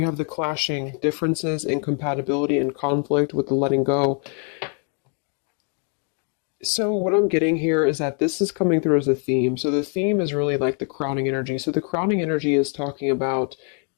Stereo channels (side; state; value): right; quieter; 39.7 dB